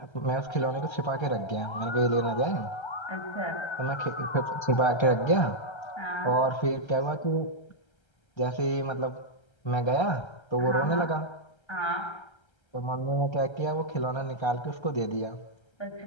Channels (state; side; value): late; right; 1.3 ms